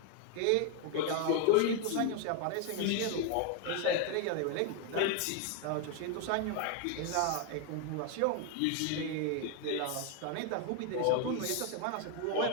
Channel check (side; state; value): both; different; correlation 0.01